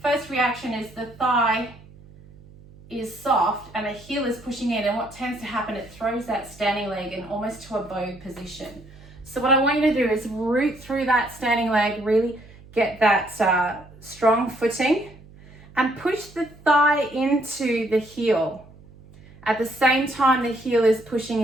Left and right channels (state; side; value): noise; right; hum, 22 dB below the sound